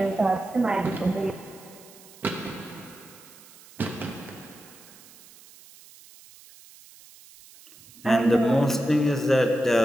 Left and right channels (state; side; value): noise; right; hiss, 22 dB below the sound